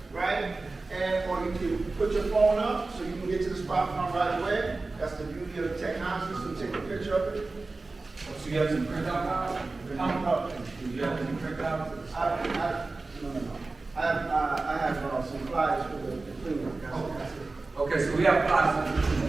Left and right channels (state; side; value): quieter; left; 3.5 dB